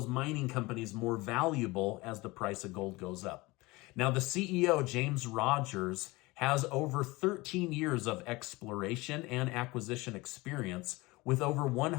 mining companies more valuable as the price of gold goes up. Now, the CEO, James Rogers, has over 13 years of exploration and acquisition experience with over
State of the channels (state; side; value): quieter; right; 22.3 dB